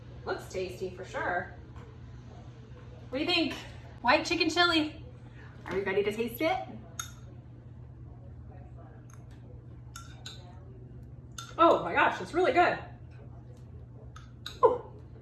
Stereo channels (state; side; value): identical; both; correlation 1.00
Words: Looks tasty for sure. What do you think? White chicken chili. Are we ready to taste it? Oh my gosh, it's really good. Ooh,